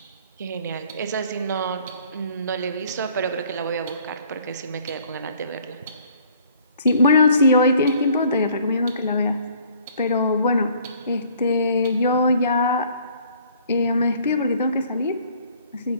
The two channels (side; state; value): both; inverted; correlation -0.57